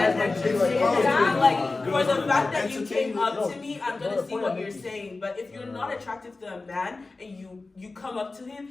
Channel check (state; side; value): quieter; right; 3.6 dB